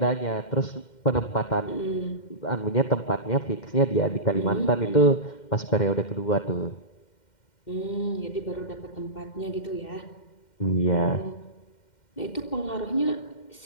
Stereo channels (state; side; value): late; right; 2.1 ms